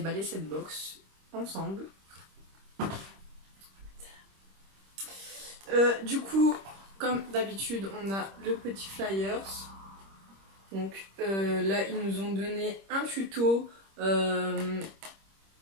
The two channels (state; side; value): late; left; 26 ms